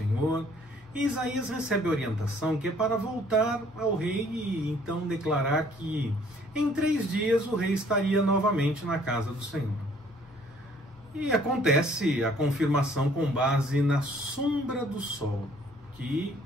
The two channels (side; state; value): both; normal; correlation 0.60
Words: e Isaías recebe a orientação que é para voltar ao rei e então declarar que em 3 dias o rei estaria novamente na casa do Senhor. E acontece a confirmação com base na sombra do sol, que